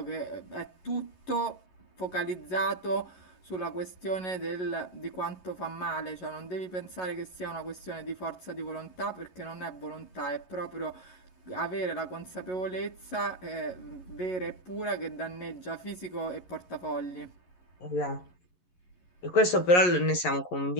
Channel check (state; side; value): late; right; 11 ms